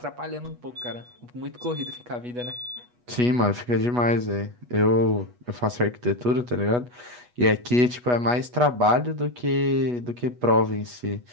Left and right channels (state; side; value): late; left; 8.2 ms